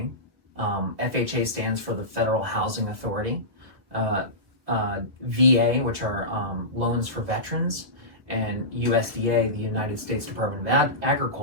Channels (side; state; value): left; late; 1.8 ms